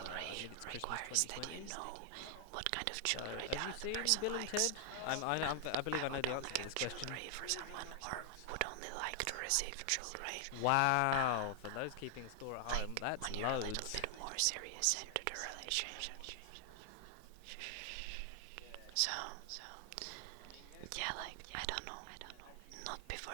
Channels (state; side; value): different; both; correlation 0.00